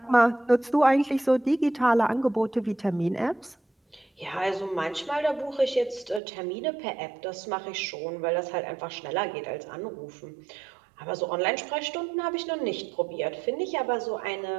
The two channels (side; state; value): left; drops out; at 6.2 s